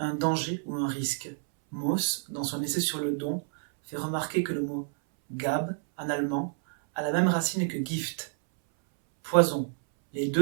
danger ou un risque. Mauss, dans son essai sur le don, fait remarquer que le mot Gab, en allemand, a la même racine que Gift, poison, les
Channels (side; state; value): left; silent; 59 dB below the other